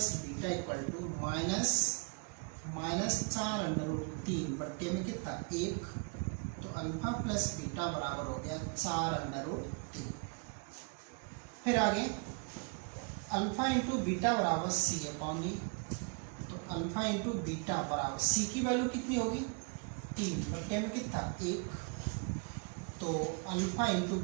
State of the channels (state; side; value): quieter; left; 35.1 dB